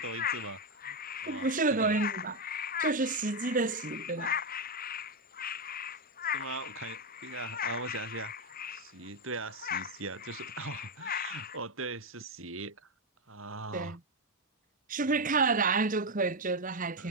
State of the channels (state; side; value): normal; both; correlation 0.06